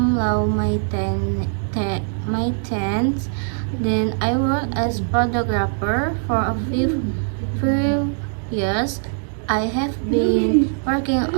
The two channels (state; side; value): silent; left; 65 dB below the other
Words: love my tents. Then I worked as photographer for a few years. I have been working